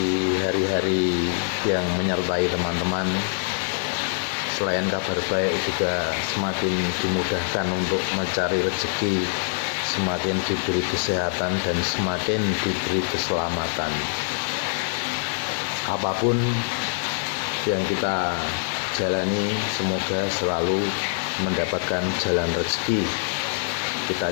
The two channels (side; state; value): right; silent; digital silence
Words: hari-hari yang menyertai teman-teman. Selain kabar baik juga semakin dimudahkan untuk mencari rezeki, semakin diberi kesehatan dan semakin diberi keselamatan. Apapun yang kita jalani, semoga selalu mendapatkan jalan rezeki. Kita